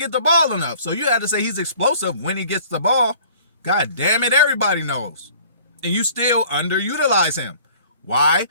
the ball enough. So you had to say he's explosive when he gets the ball. God damn it, everybody knows. And you still underutilize him. Why?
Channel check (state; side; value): inverted; both; correlation -0.52